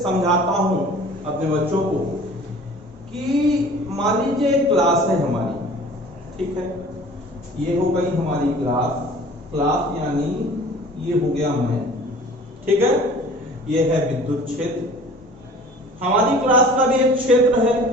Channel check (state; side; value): normal; both; correlation 0.46